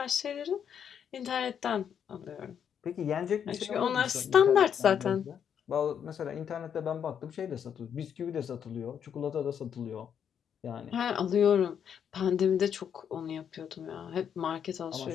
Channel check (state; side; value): quieter; right; 8.2 dB